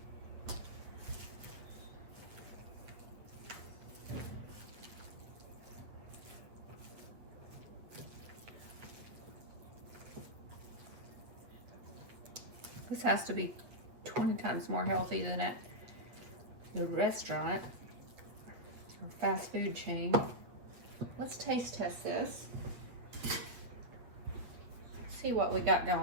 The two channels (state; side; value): late; left; 8.6 ms